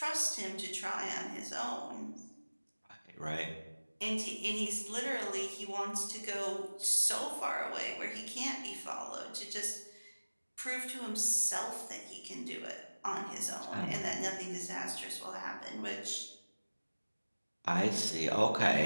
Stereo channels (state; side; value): inverted; both; correlation -1.00